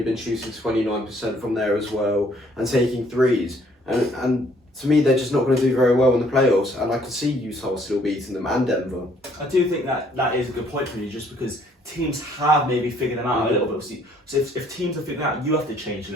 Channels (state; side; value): normal; both; correlation 0.63